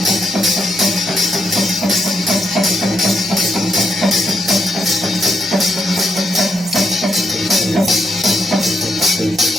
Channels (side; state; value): both; normal; correlation 0.78